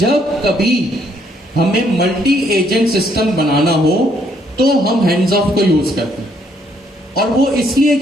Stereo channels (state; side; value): normal; both; correlation 0.69